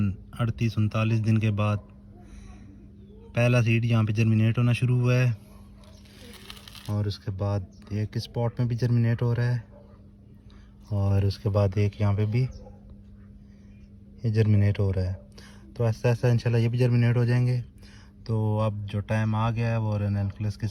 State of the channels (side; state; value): both; identical; correlation 1.00